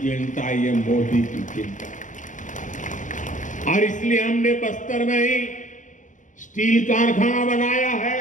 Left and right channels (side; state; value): right; late; 0.37 ms